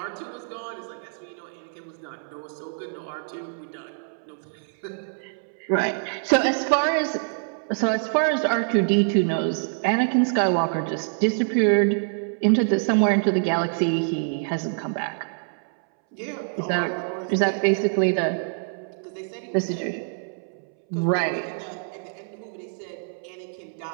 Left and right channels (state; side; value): silent; left; 61 dB below the other